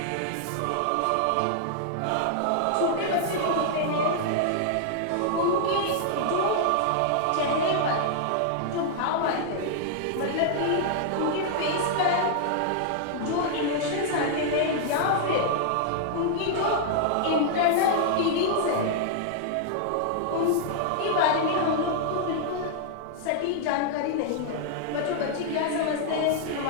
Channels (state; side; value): different; both; correlation -0.01